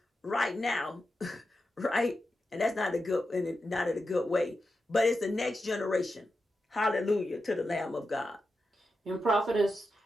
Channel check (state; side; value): normal; both; correlation 0.89